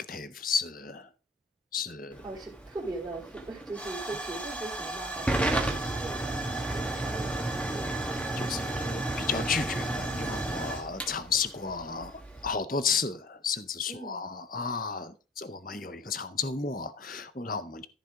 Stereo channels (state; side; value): normal; both; correlation 0.54